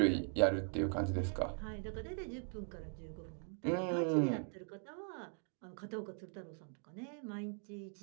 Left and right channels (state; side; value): silent; left; 51 dB below the other